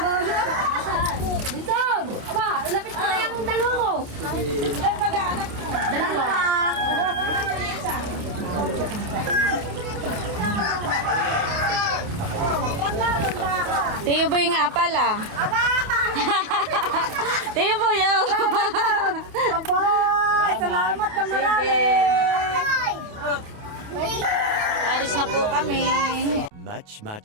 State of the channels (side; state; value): left; late; 28 ms